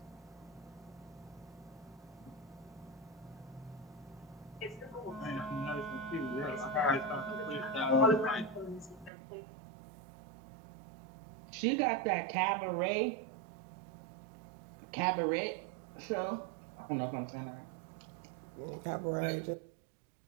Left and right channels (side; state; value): left; drops out; at 9.1 s